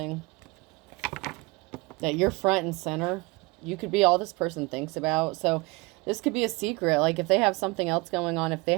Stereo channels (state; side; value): quieter; left; 24.8 dB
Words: That you're front and center. You could be all this person thinks about. So this could be a secret. Like if they have something else going on, if they